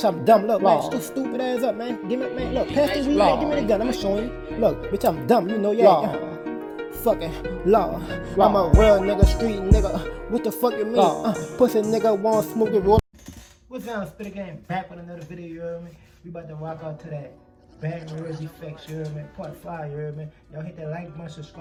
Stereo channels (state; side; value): identical; both; correlation 1.00